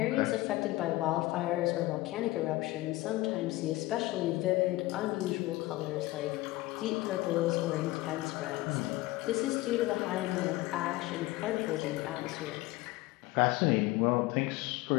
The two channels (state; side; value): quieter; right; 18.9 dB